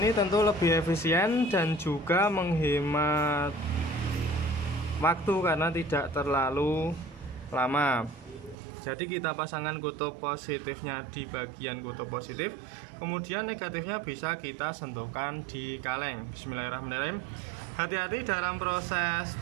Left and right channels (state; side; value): drops out; left; at 8.6 s